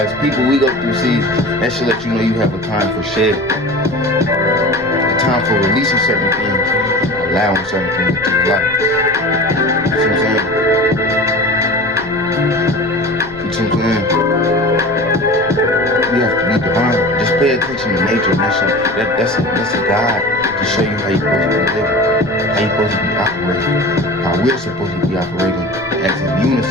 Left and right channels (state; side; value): noise; left; rumble, 21 dB below the sound